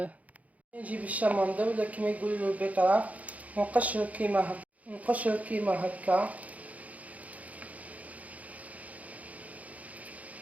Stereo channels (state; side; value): late; left; 0.071 ms